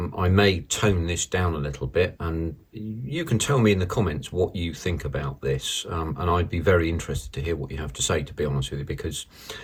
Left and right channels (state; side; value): identical; both; correlation 1.00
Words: may tone this down a little bit, and you can tell me in the comments what you think about this, and I'd be very interested to hear what you have to say, to be honest with you, because